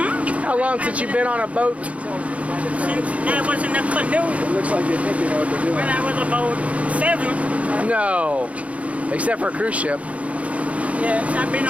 How long since you've been on a boat? Since I was in a canoe. It looks like you think you know what they're doing. When I was about 7. No, except for a cruise ship. Yes, I've been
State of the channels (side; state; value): left; late; 0.065 ms